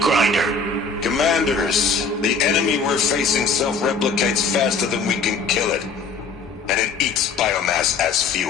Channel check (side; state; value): right; quieter; 4.5 dB